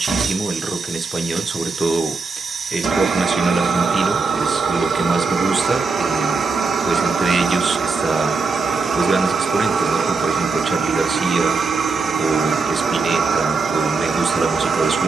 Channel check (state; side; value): quieter; left; 4.2 dB